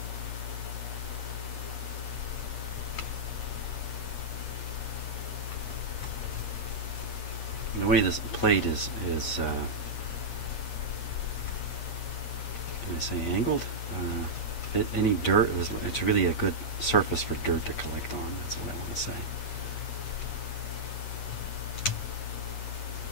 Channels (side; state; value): right; late; 8.5 ms